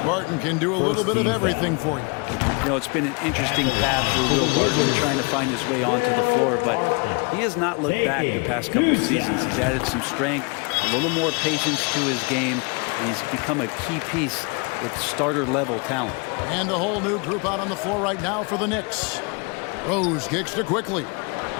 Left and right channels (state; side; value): quieter; right; 31.8 dB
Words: Barton can do a little bit of everything for you. You know, it's been an interesting path for Will Barton trying to find his way onto the floor, but he has not looked back the past couple of seasons. He's added some strength, a little more patience to his game, and he's become a key piece with starter-level talent. And a whole new group out on the floor right now for the Knicks. Rose kicks to Quickly.